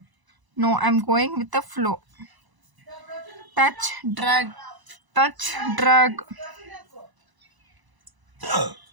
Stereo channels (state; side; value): late; left; 1.0 ms